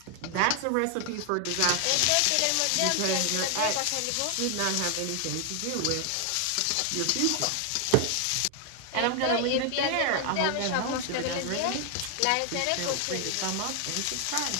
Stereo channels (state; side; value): different; both; correlation 0.00